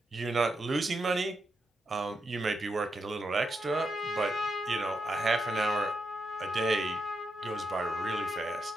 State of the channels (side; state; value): both; normal; correlation 0.84